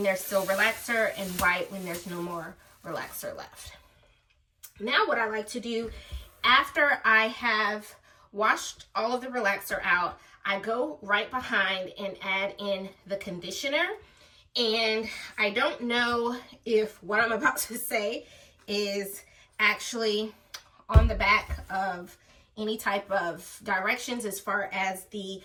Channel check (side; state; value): both; identical; correlation 1.00